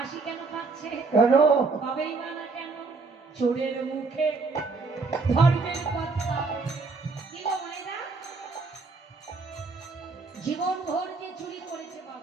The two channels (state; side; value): quieter; left; 4.2 dB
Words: কেন পাচ্ছে কেন পাবেই বা না কেন চোরের মুখে ধর্মের কথা কি গো মায়েরা জীবন ভর যে চুরি করেছে